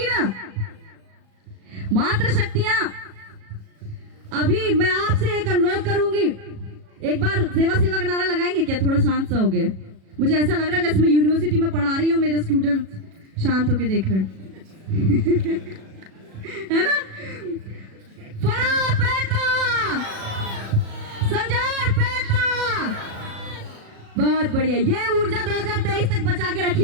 ना। मात्र शक्तियां, अभी मैं आपसे एक अनुरोध करूंगी, एक बार सेवा सेवा का नारा लगाएंगे क्या? थोड़ा शांत सा हो गए, मुझे ऐसा लग रहा है जैसे मैं यूनिवर्सिटी में पढ़ा रही हूँ, मेरे स्टूडेंट शांत होके देख रहे हैं है ना? बहुत बढ़िया, ये ऊर्जा 2023 तक बचा के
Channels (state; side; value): late; left; 37 ms